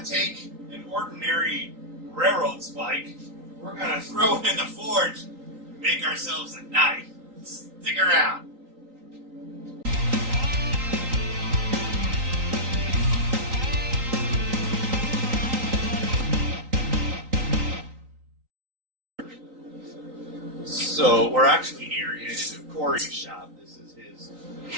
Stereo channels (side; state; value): left; late; 3.9 ms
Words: take an ordinary railroad spike. We're gonna throw it in the forge and make ourselves a knife. Stick around. So we're actually here in Cory's shop. This is his